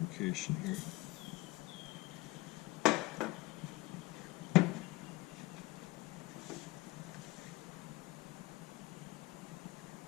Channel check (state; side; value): quieter; right; 21.2 dB